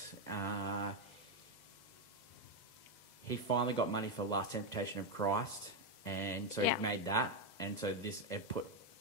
He finally got money for Last Temptation of Christ. And so he made that. And so it put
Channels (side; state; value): right; late; 2.0 ms